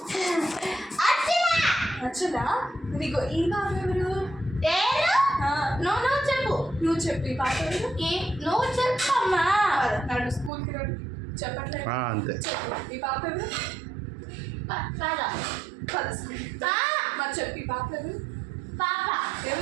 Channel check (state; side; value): drops out; left; at 10.5 s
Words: అచ్చలా నీకు ఈ పాప ఎవరు? నువ్వు చెప్పు. ఈ పాప ఎవరు? నువ్వు చెప్పమ్మా. నాడు స్కూల్కి రాడు చెప్పట్లేదు. అంతే. చెప్పు ఈ పాప ఎవరు? మరి చెప్పు ఈ పాప ఎవరు?